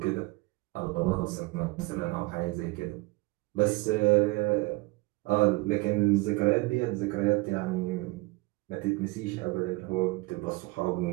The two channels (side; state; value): left; quieter; 23.4 dB